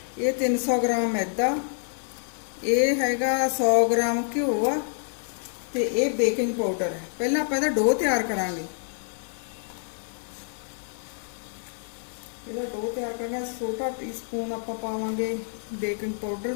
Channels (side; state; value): right; silent; digital silence